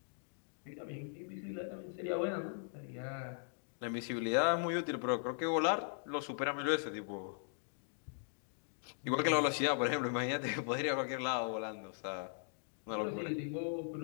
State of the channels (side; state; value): right; silent; digital silence